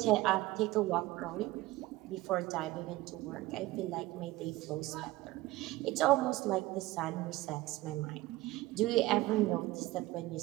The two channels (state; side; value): quieter; left; 18.4 dB